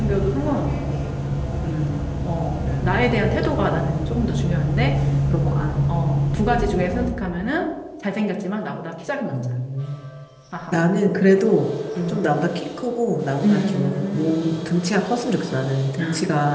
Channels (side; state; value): both; identical; correlation 1.00